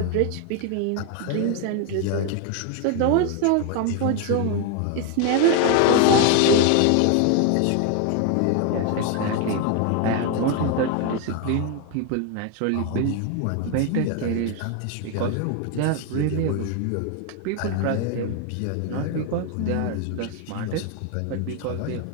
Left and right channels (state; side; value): different; both; correlation 0.01